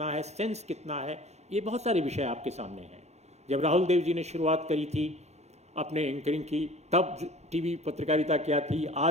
है, सेंस कितना है, ये बहुत सारे विषय आपके सामने हैं। जब राहुल देव जी ने शुरुआत करी थी अपने एंकरिंग की, तब टीवी पत्रकारिता क्या थी,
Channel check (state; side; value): late; left; 0.32 ms